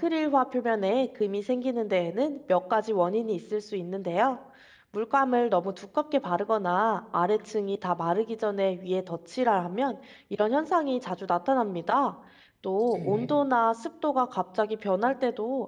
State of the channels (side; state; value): both; identical; correlation 1.00